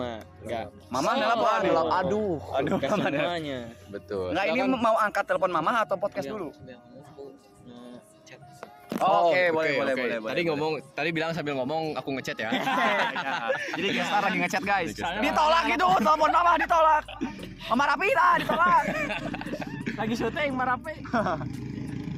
Enggak. Mama nelpon. aduh, Aduh, Mama semuanya. betul. Nggak, ini Silakan. mau angkat telepon mama atau podcast dulu? Chat. Oke, oke, boleh. Tadi tadi bilang sambil ngomong aku ngechat ya. Jadi gestar lagi ngechat guys. Gestar. Ditolak gitu, telepon mama ditolak. Mama Rapita ditolak. lagi syuting Marape.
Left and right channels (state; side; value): identical; both; correlation 1.00